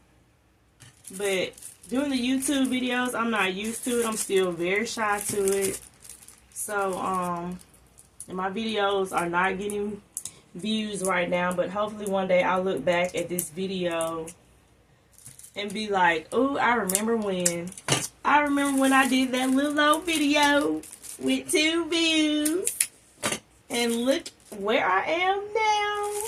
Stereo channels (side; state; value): both; identical; correlation 1.00